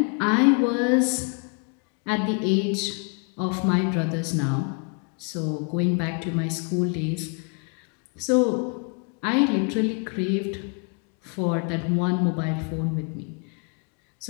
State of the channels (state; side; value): quieter; right; 37.5 dB